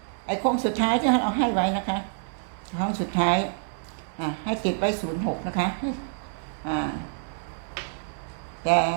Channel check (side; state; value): left; silent; digital silence